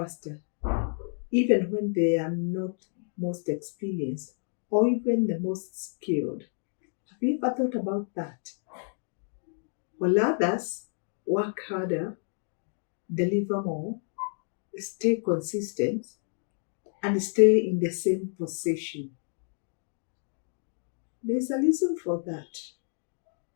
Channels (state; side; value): silent; right; 57 dB below the other